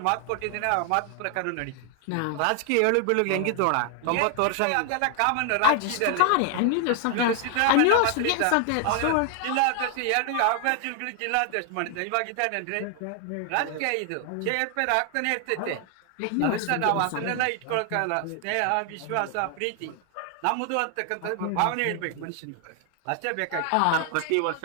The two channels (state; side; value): different; both; correlation 0.00